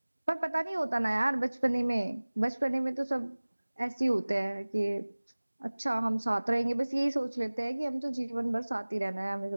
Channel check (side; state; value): both; inverted; correlation -1.00